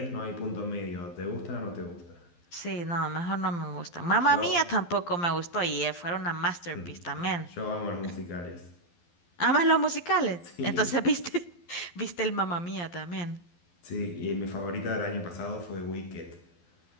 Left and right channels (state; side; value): late; right; 12 ms